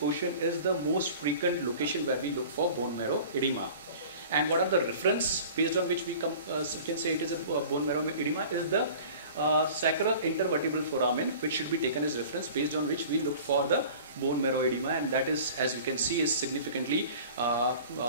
is the most frequent location where we look for bone marrow edema. And what are the reference based on which we can say it is a bone marrow edema is the sacral intervertebral foramen, which should be taken as reference, based on which we look for the bone marrow edema, and that is, as we can see, is significantly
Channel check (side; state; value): both; inverted; correlation -0.42